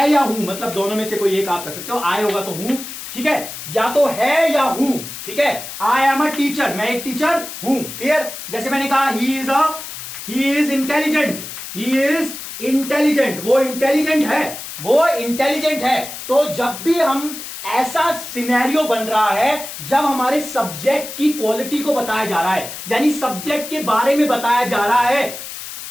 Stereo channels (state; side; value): noise; left; hiss, 10 dB below the sound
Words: या हूं, मतलब दोनों में से कोई एक आप कर सकते हो, आई होगा तो हूं, ठीक है, या तो है या हूं। ठीक है, आई एम अ टीचर, मैं एक टीचर हूं। क्लियर? जैसे मैंने कहा he is intelligent, he is intelligent, वो इंटेलिजेंट है, वो इंटेलिजेंट है। तो जब भी हम ऐसा सिनेरियो बन रहा है जब हमारे सब्जेक्ट की क्वालिटी को बताया जा रहा है, यानी सब्जेक्ट के बारे में बताया जा रहा है